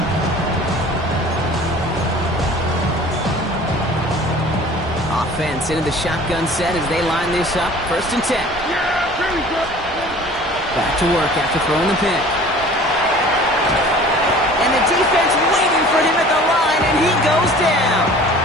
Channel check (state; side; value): normal; both; correlation 0.46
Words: Offense into the shotgun set as they line this up. First and 10. Back to work after throwing the pick. And the defense waiting for him at the line, and he goes down.